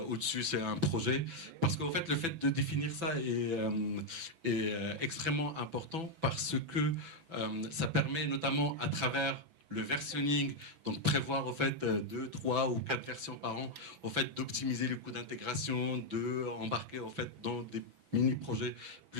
au-dessus c'est un projet. Parce qu'en fait, le fait de définir ça est extrêmement important parce que ça permet notamment à travers le versionning, donc prévoir en fait 2, 3 ou 4 versions par an, en fait d'optimiser les coûts d'intégration, de embarquer en fait dans des mini-projets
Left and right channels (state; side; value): late; left; 6.0 ms